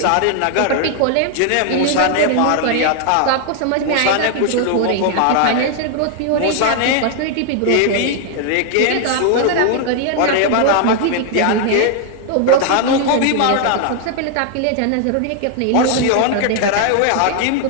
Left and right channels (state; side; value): different; both; correlation 0.00